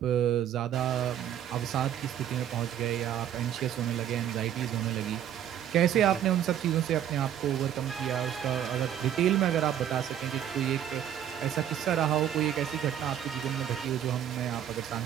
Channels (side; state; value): left; quieter; 10.2 dB